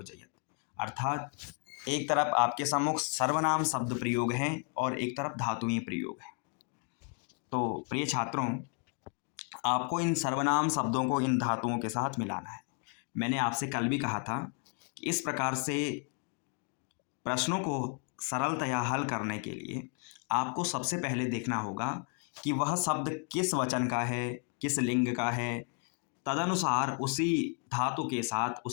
अर्थात एक तरफ आपके सम्मुख सर्वनाम शब्द प्रयोग हैं और एक तरफ धातुएं प्रयोग हैं। तो प्रिय छात्रों, आपको इन सर्वनाम शब्दों को इन धातुओं के साथ मिलाना है। मैंने आपसे कल भी कहा था कि इस प्रकार से प्रश्नों को सरलतया हल करने के लिए आपको सबसे पहले देखना होगा कि वह शब्द किस वचन का है, किस लिंग का है। तदनुसार उसी धातु के साथ,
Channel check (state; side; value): quieter; right; 37.8 dB